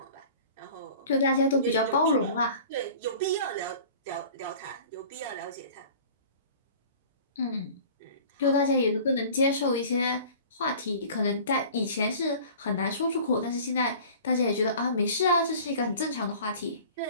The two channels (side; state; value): both; inverted; correlation -0.44